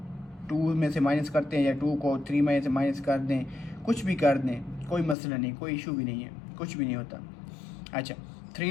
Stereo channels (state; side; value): drops out; right; at 5.2 s